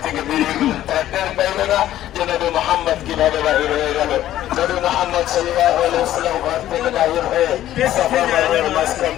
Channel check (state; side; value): quieter; right; 13.0 dB